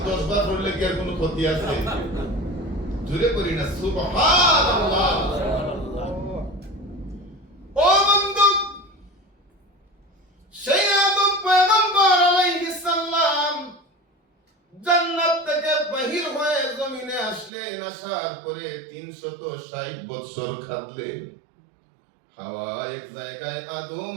10 বার পড়লে কি আর কোনো ক্ষতি আছে? জোরে করি না সুবহানাল্লাহ। ও বন্ধু, সেই আদম পয়গম্বর আলাইহিস সালাম জান্নাত থেকে বাহির হয়ে জমিনে আসলেন। আসার পরে 360 বছর কাটলেন। হাওয়া এক জায়গায়, আদম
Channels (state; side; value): drops out; left; at 17.5 s